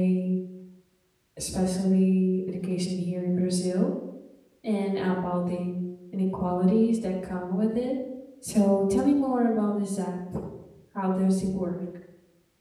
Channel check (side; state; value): both; identical; correlation 1.00